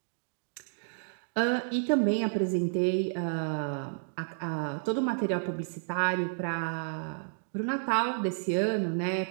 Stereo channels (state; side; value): silent; left; digital silence